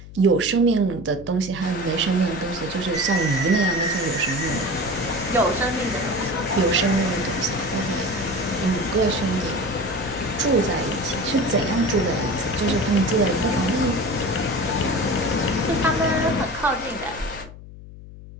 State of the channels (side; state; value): left; noise; hum, 16 dB below the sound